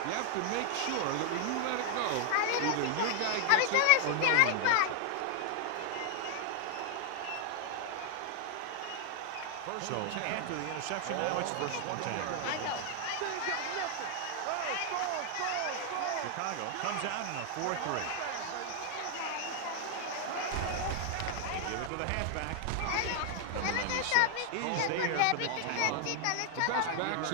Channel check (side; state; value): both; different; correlation 0.00